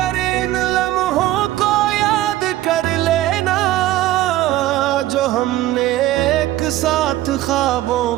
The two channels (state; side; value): quieter; left; 15.0 dB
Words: इन लम्हों को याद कर लेना, जो हमने एक साथ ख्वाबों